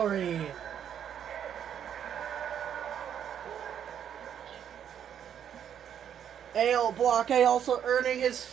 Ale Blockade also earning his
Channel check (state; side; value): quieter; left; 9.0 dB